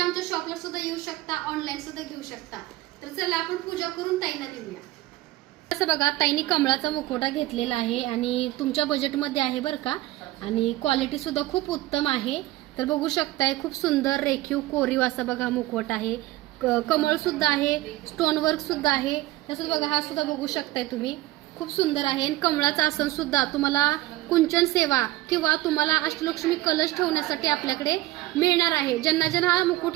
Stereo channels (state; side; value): quieter; left; 17.4 dB